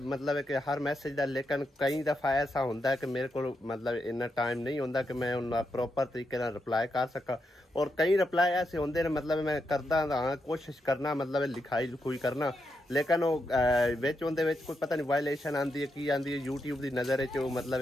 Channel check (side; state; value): both; normal; correlation 0.84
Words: मतलब है कि हर मैसेज का, लेकिन कई दफ़ा ऐसा होता है कि मेरे को मतलब इन्ना टाइम नहीं होता कि मैं उन्हें प्रॉपर तरीके से रिप्लाई कर सका। और कई रिप्लाई ऐसे होंगे ने मतलब मैं करता हाँ कोशिश करना मतलब लिखाई लुखाई करना, लेकिन वो कोई पता नहीं वायलेशन आती है की आती है यूट्यूब की नज़र मतलब